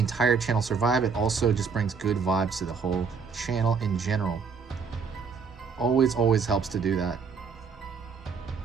channel survive. It also just brings good vibes to the whole channel in general. Always helps to do that.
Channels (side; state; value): left; quieter; 5.6 dB